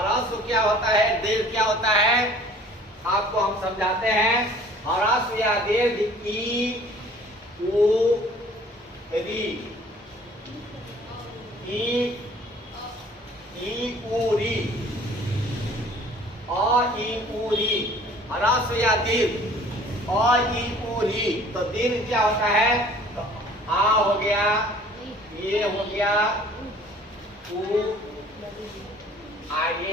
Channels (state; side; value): normal; both; correlation 0.51